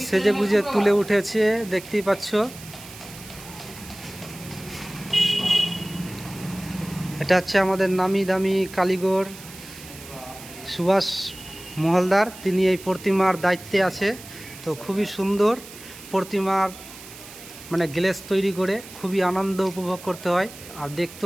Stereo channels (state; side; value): noise; right; hiss, 16 dB below the sound